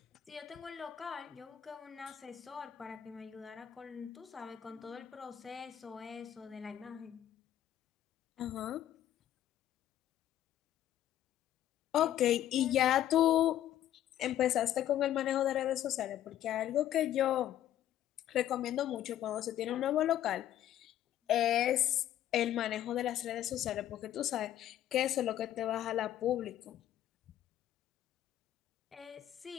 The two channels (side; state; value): right; quieter; 11.9 dB